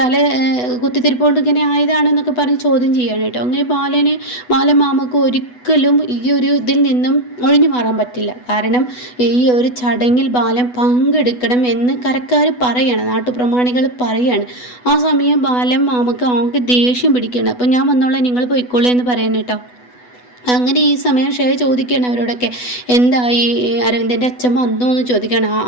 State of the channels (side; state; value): right; late; 8.1 ms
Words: കുത്തിത്തിരിപ്പോണ്ട് ഇങ്ങനെ ആയതാണെന്നൊക്കെ പറഞ്ഞ് ചോദ്യം ചെയ്യാണ് കേട്ടോ. അങ്ങനെ ബാലമാമക്ക് ഒരിക്കലും ഈ ഒരു ഇതിൽ നിന്നും ഒഴിഞ്ഞു മാറാൻ പറ്റില്ല. കാരണം ഈ ഒരു ചടങ്ങിൽ ബാലൻ പങ്കെടുക്കണം എന്ന് കരക്കാർ പറയാണ്, നാട്ടുപ്രമാണികൾ പറയാണ്. ആ സമയം മാമക്ക് ആകെ ദേഷ്യം പിടിക്കണം. അപ്പം ഞാൻ വന്നോളാം, നിങ്ങൾ പോയിക്കോളൂ എന്ന് പറയണം കേട്ടോ. അങ്ങനെ ഈ സമയം ഷെയ ചോദിക്കുകയാണ് അവരോടൊക്കെ, എന്തായി, അരവിന്ദൻ്റെ അച്ഛൻ വന്നോ എന്ന് ചോദിക്കുകയാണ്.